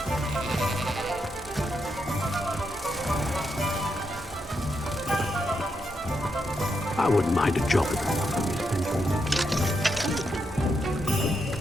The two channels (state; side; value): normal; both; correlation 0.82